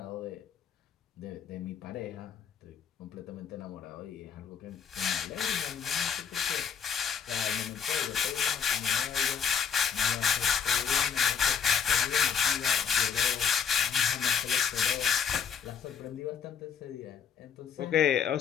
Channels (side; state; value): right; quieter; 7.4 dB